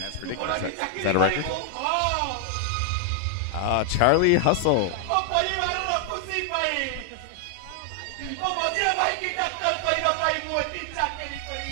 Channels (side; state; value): both; different; correlation 0.00